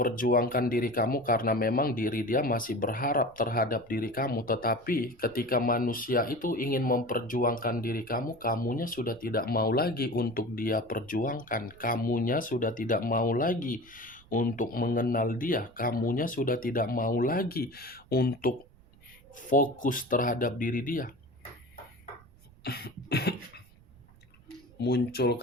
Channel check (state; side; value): noise; right; rumble, 26 dB below the sound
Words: diri kamu, karena memang diri dia masih berharap terhadap diri kamu. Tetapi ketika manusia itu ingin memperjuangkan diri kamu, kamunya sudah tidak mau lagi untuk dia perjuangkan. Kamunya sudah tidak mau lagi untuk mengenal dia. Kamunya sudah tidak mau lagi untuk fokus terhadap diri dia. Muncul